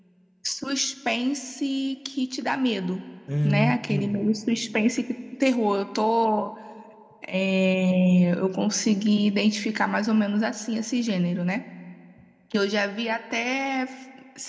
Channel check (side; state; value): both; identical; correlation 1.00